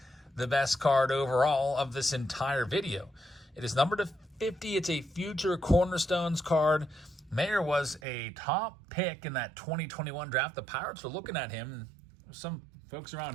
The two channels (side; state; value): left; drops out; at 8.0 s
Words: the best card overall of this entire video. It is numbered to 50. It's a future Cornerstones card. Mayer was a top pick in that 2021 draft. The Pirates were looking at him. Some folks